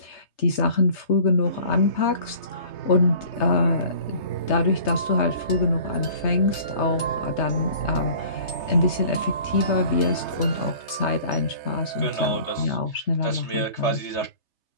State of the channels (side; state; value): right; late; 3.3 ms